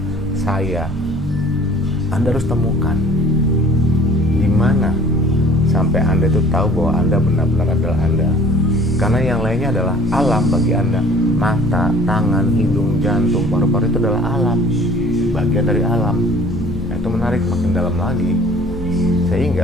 saya. Anda harus temukan di mana sampai Anda itu tahu bahwa Anda benar-benar adalah Anda. Karena yang lainnya adalah alam bagi Anda. Mata, tangan, hidung, jantung, paru-paru itu adalah alam, bagian dari alam. Nah, itu menarik, makin dalam lagi.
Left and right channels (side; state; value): both; normal; correlation 0.50